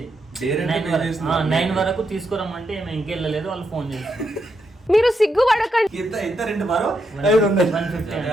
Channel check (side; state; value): both; normal; correlation 0.81